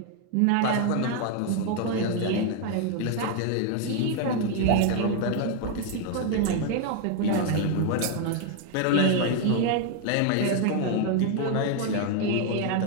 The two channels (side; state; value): both; different; correlation 0.01